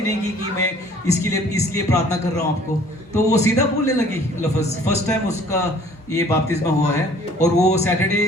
नहीं की कि मैं इसलिए प्रार्थना कर रहा हूँ आपको। तो वो सीधा बोलने लगी लफ्ज़। फर्स्ट टाइम उसका ये बपतिस्मा हुआ है और वो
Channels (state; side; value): normal; both; correlation 0.54